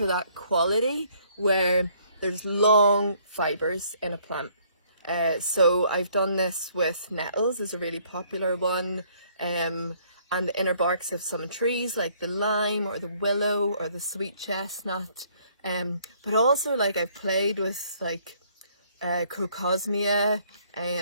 that quality where there's long fibres in a plant. So I've done this with nettles, is a really popular one, and the inner barks of some trees like the lime or the willow or the sweet chestnut. But also like I've played with like crocosmia,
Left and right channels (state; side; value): inverted; both; correlation -0.64